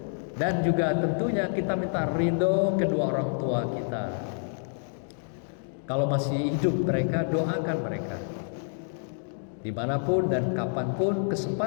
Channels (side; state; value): right; silent; digital silence